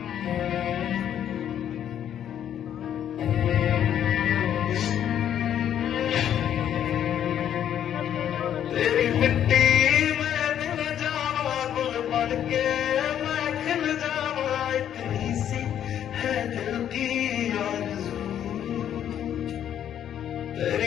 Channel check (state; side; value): quieter; right; 10.0 dB